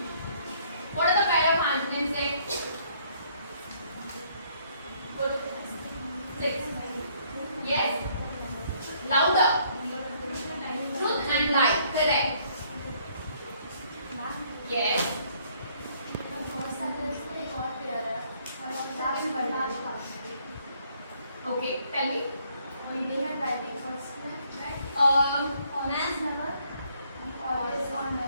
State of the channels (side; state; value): both; inverted; correlation -0.65